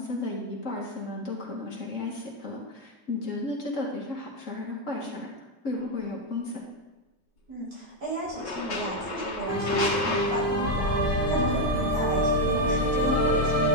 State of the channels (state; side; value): normal; both; correlation 0.04